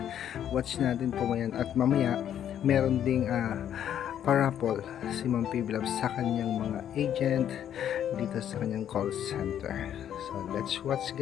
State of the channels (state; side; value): quieter; right; 10.1 dB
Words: watch natin po ngayon at mamaya meron ding parapol si Ma'am Bibilang sa kanyang mga agent dito sa kanyang call center. So let's watch